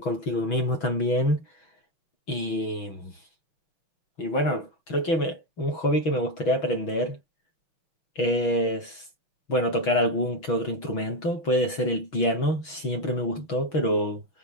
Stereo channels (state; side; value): late; right; 6.2 ms